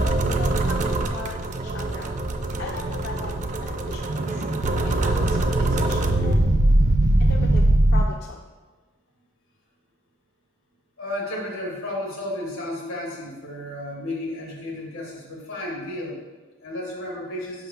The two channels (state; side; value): normal; both; correlation 0.80